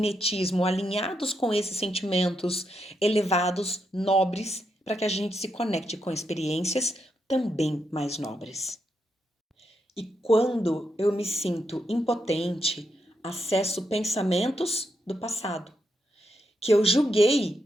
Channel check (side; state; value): both; normal; correlation 0.82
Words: alinhados com esses sentimentos elevados, nobres, para que a gente se conecte com experiências também mais nobres. E quando eu me sinto impotente, acesso pensamentos do passado, que eu